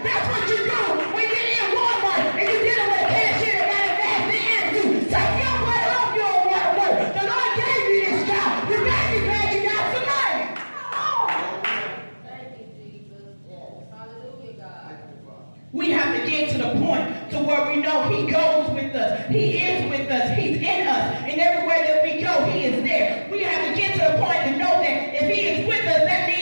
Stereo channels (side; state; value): both; inverted; correlation -1.00